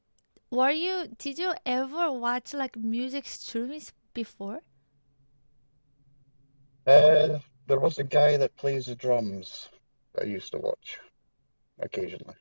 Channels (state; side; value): inverted; both; correlation -1.00